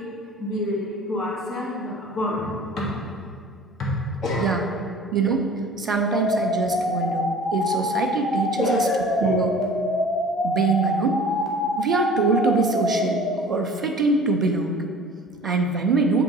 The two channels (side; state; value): both; normal; correlation 0.45